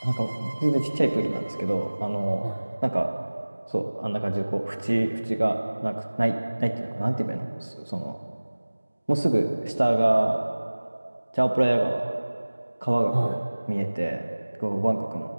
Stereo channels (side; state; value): both; inverted; correlation -1.00